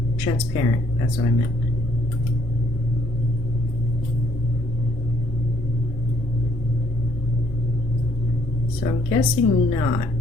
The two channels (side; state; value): both; normal; correlation 0.67